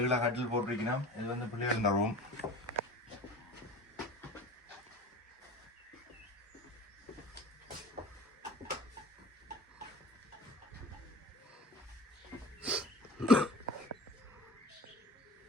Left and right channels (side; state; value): both; normal; correlation 0.37